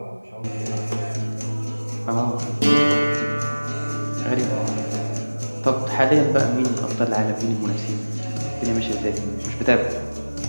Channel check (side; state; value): both; inverted; correlation -1.00